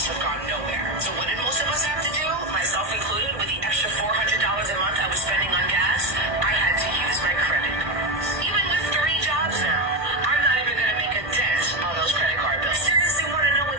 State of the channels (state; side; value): late; left; 1.6 ms